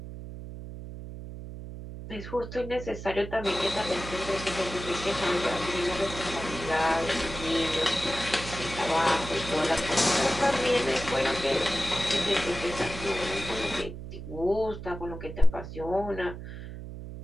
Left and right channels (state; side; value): noise; right; hum, 10 dB below the sound